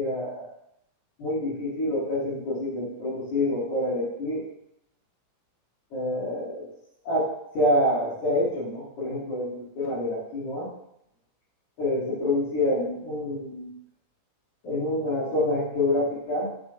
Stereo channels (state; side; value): late; right; 17 ms